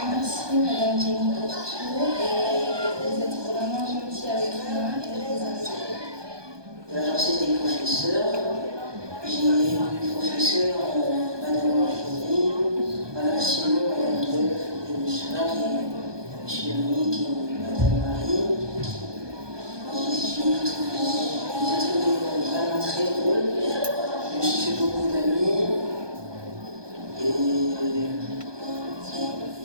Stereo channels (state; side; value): late; left; 1.2 ms